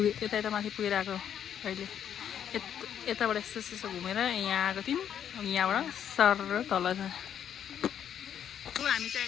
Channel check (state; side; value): quieter; right; 9.2 dB